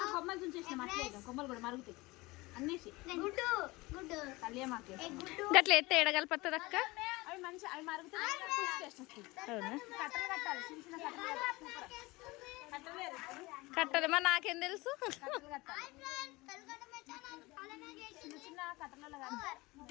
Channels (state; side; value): quieter; right; 22.1 dB